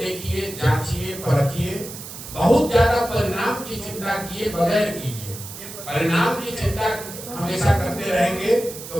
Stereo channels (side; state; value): right; noise; hiss, 12 dB below the sound